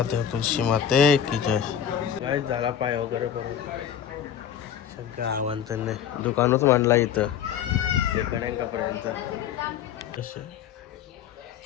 तुलसी माते की जय. काय झाला पाय वगैरे करून सगळं आव्हान दुकानच मांडला इथं कपड्यांचा.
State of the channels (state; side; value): quieter; right; 9.1 dB